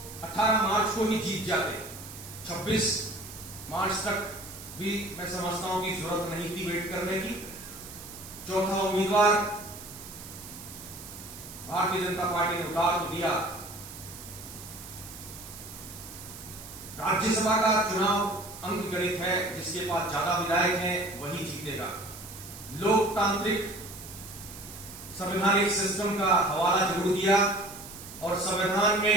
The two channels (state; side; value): noise; right; hiss, 14 dB below the sound